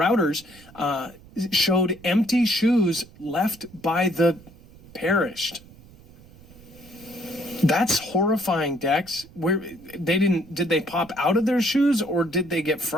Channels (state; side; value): noise; right; rumble, 23 dB below the sound